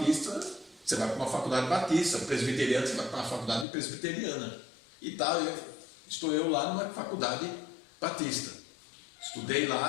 você vai para uma faculdade batista, presbiteriana, você vai para uma faculdade presbiteriana. E tal, estou eu lá numa faculdade batista. Estudei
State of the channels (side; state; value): right; drops out; at 3.7 s